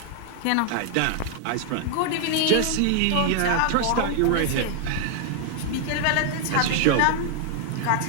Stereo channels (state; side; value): different; both; correlation 0.00